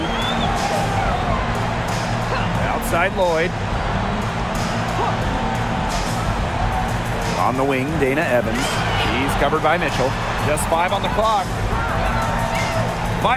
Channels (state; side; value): identical; both; correlation 1.00